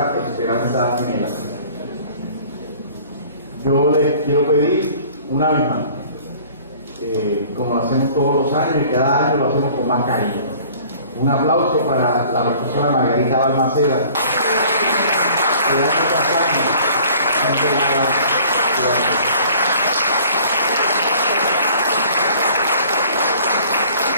Esperanza gemela. Yo les quiero pedir una vez más, como lo hacemos todos los años y cada año lo hacemos con más cariño, un aplauso para la profesora Margarita Balmaceda, que hace campaña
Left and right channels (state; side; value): inverted; both; correlation -0.51